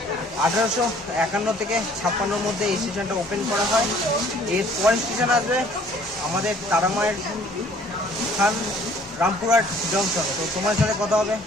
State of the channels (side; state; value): both; normal; correlation 0.56